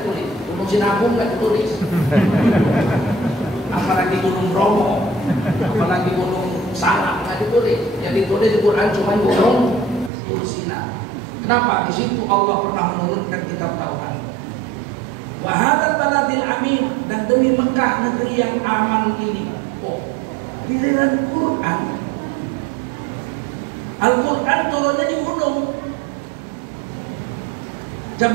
gunung Sinabung nggak ditulis. Apalagi gunung Bromo, apalagi gunung Salak nggak ditulis. Yang ditulis di Quran cuma gunung Tursina. Kenapa? Di situ Allah pernah menurunkan kitab Taurat. Wa hadzal baladil amin, dan demi Mekah Mekah negeri yang aman ini? Oh, giliran Quran. Al-Quran turunnya di gunung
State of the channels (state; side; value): drops out; left; at 10.1 s